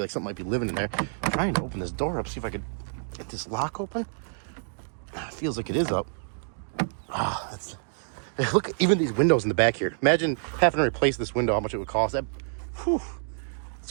like something might be living in there. I'm trying to open this door up, see if I could get this lock open. It feels like it is up. Look, even these windows in the back here. Imagine having to replace this window, how much it would cost.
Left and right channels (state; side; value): silent; left; digital silence